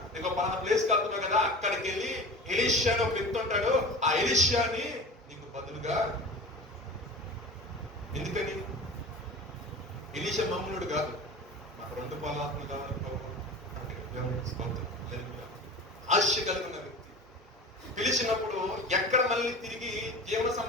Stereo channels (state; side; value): normal; both; correlation 0.35